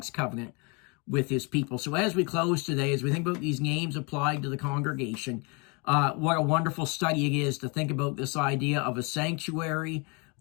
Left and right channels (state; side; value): quieter; right; 31.4 dB